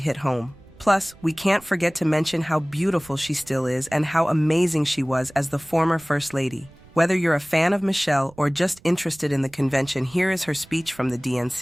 home. Plus, we can't forget to mention how beautiful she still is and how amazing she was as the former First Lady. Whether you're a fan of Michelle or just interested in the convention, here is her speech from the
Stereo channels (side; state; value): right; noise; rumble, 25 dB below the sound